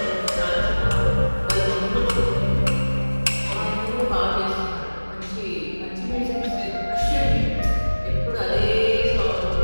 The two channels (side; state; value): both; inverted; correlation -1.00